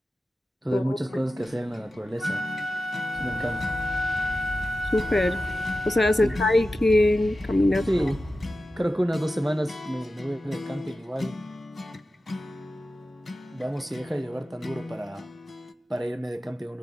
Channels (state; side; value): normal; both; correlation 0.93